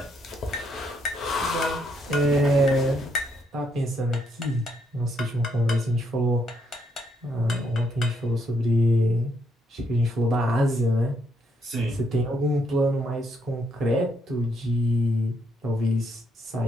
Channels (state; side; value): normal; both; correlation 0.74